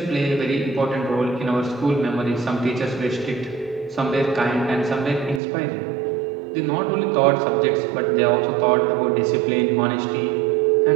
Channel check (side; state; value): left; drops out; at 5.4 s